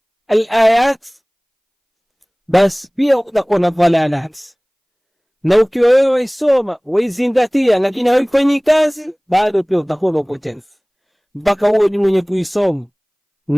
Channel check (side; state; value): both; identical; correlation 1.00